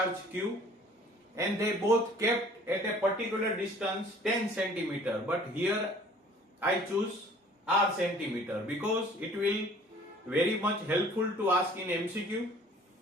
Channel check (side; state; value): both; normal; correlation 0.52